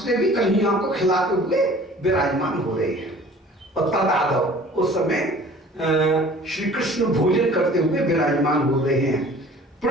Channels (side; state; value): both; normal; correlation 0.48